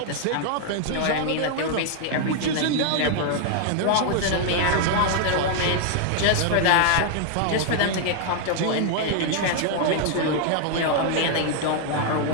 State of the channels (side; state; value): both; different; correlation 0.00